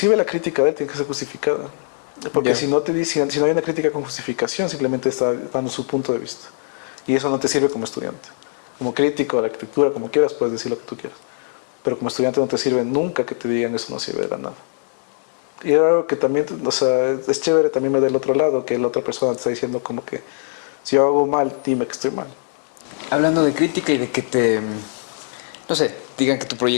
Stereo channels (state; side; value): silent; right; 65 dB below the other